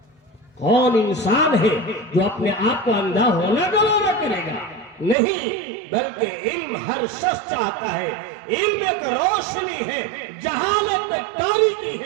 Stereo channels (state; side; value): drops out; left; at 5.2 s